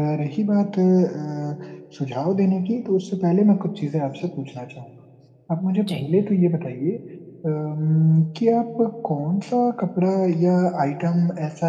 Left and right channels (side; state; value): both; identical; correlation 1.00